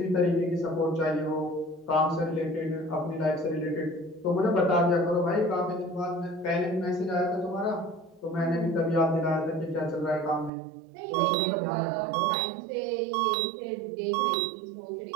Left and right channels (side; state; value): left; drops out; at 10.5 s